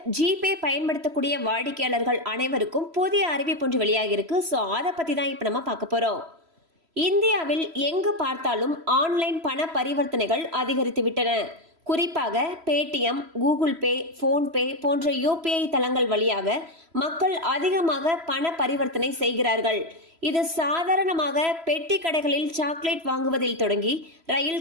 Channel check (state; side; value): late; left; 3.0 ms